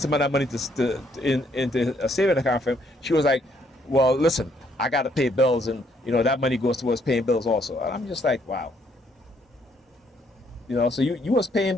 of that money into a saving account for him. She was like, well, listen, I got to pay bills, and that money goes towards paying bills also. And I'm just like, wow. So you was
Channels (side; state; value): both; normal; correlation 0.69